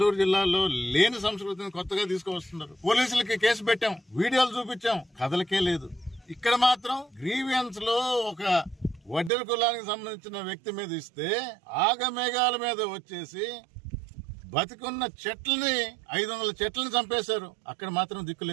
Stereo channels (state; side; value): drops out; left; at 9.3 s